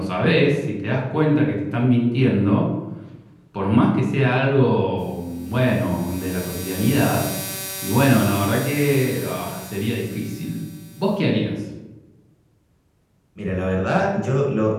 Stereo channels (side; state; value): both; identical; correlation 1.00